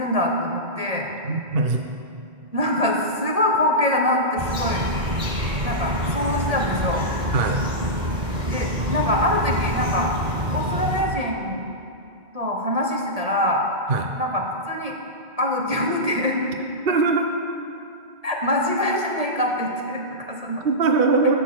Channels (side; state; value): left; late; 1.8 ms